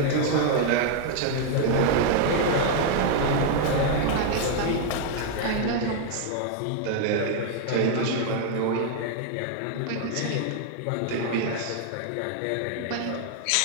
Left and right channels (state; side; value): different; both; correlation 0.00